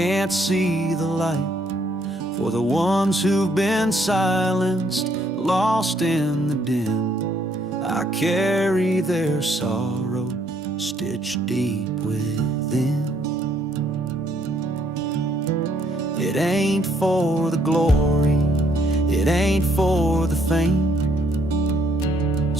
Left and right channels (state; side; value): normal; both; correlation 0.68